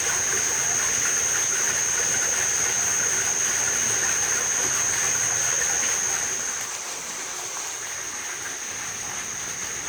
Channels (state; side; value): identical; both; correlation 1.00